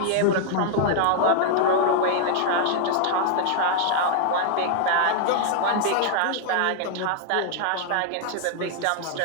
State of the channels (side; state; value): both; different; correlation 0.00